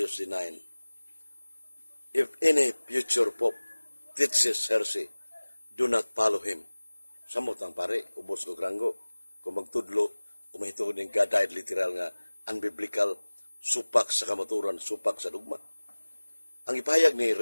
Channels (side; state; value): both; inverted; correlation -1.00